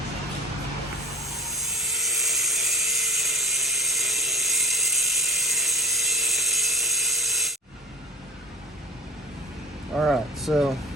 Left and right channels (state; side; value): normal; both; correlation 0.42